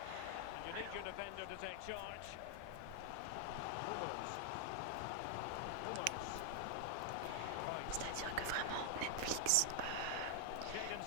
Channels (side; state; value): both; different; correlation 0.00